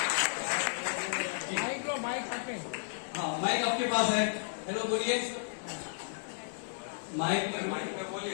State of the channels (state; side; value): silent; right; digital silence